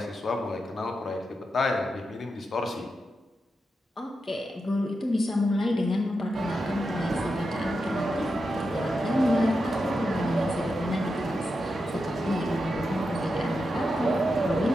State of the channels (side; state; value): both; normal; correlation 0.88